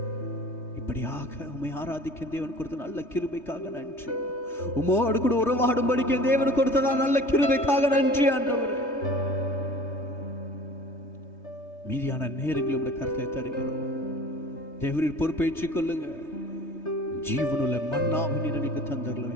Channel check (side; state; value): right; late; 3.3 ms